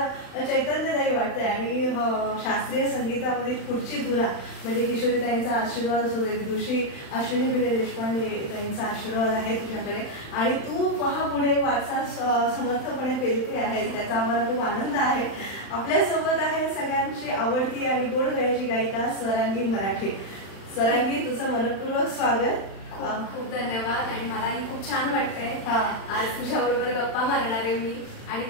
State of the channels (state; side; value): late; right; 35 ms